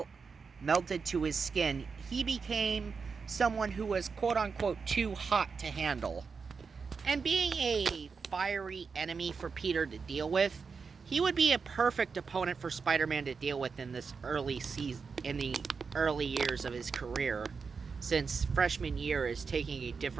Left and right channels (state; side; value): quieter; left; 5.3 dB